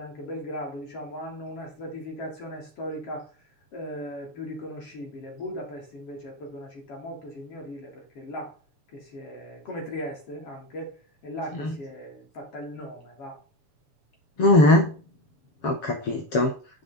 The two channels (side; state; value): right; late; 7.2 ms